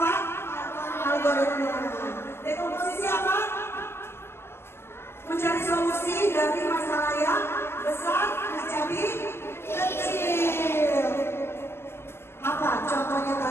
algoritma. Dekomposisi apa? solusi dari masalah yang besar menjadi kecil. Apa contohnya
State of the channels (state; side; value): late; right; 0.12 ms